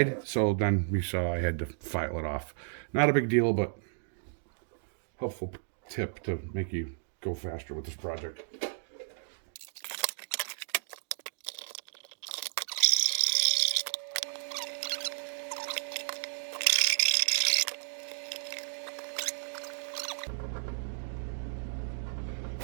So then we saw I had to file it off. Not a big deal, but helpful tip to make you go faster with this project.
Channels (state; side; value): silent; left; digital silence